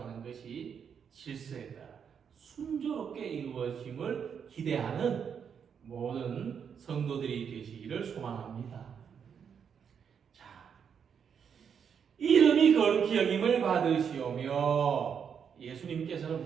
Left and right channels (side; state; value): left; quieter; 7.3 dB